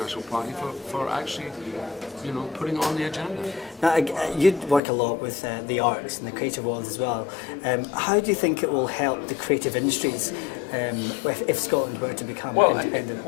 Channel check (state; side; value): drops out; right; at 4.8 s